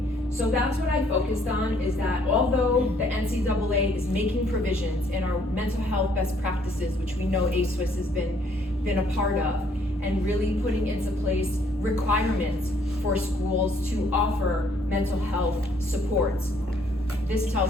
So that's what I focused on, is that although the NCAA is making provisions in our mental health best practices, which we know ASWIS has been a part of, and really putting into place requirements for schools to offer mental health supports, this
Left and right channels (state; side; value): normal; both; correlation 0.65